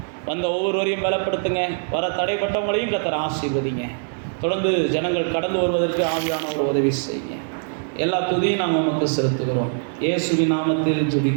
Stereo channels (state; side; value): silent; left; digital silence